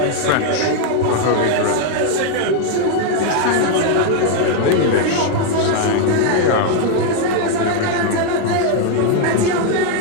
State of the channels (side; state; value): both; different; correlation 0.01